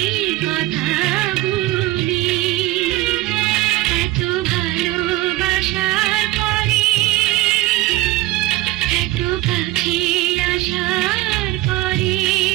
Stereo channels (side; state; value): left; quieter; 18.1 dB